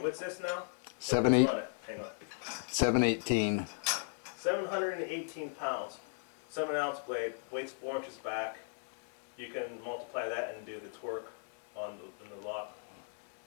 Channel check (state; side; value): silent; right; 53 dB below the other